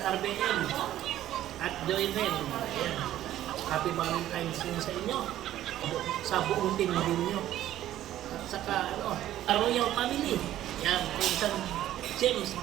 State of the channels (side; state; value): left; quieter; 12.9 dB